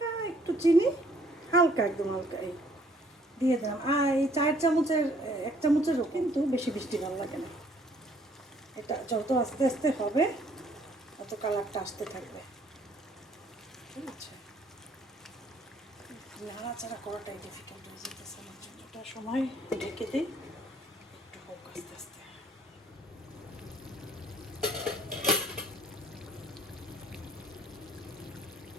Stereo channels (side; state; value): both; normal; correlation 0.62